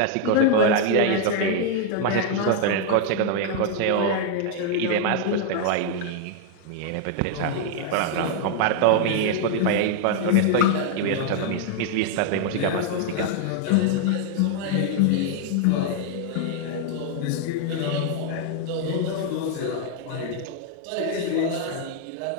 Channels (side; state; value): both; different; correlation 0.00